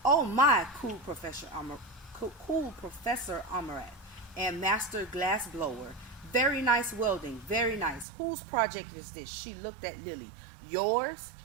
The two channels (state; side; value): drops out; left; at 8.1 s